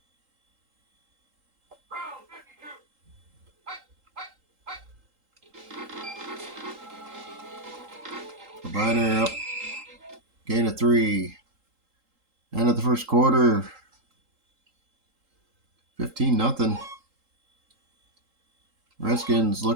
Biner up. Gain of 3. End of the first quarter. 15-0. Redskins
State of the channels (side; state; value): left; late; 3.8 ms